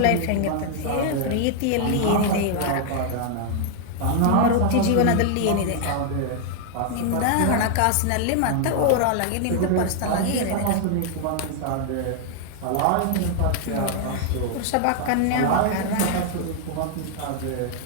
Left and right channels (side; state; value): both; different; correlation 0.00